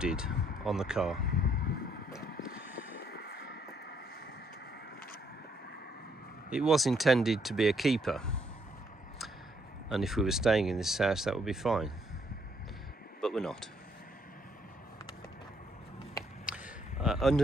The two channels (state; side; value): normal; both; correlation 0.70